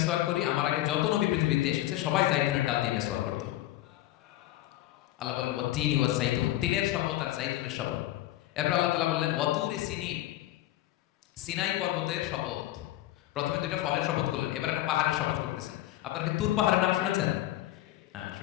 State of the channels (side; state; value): right; quieter; 15.3 dB